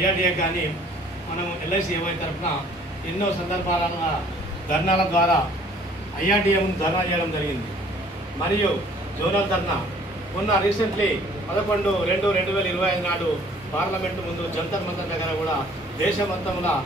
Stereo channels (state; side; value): normal; both; correlation 0.56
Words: కానీ మనం ఎల్ఐసి ఏవై తరఫున ఎన్నో సందర్భాల ధర్నాల ద్వారా ఐఆర్డీఏ ముందు ధర్నా చేయడం జరిగింది. మరియు జోనల్ ధర్నా మొన్న రీసెంట్లీ 11/2/2025 నాడు పార్లమెంటు ముందు జంతర్ మంతర్ దగ్గర కూడా దేశమంతంలో